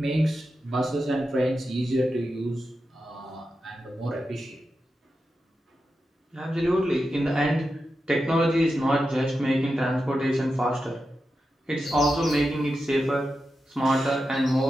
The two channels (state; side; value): normal; both; correlation 0.90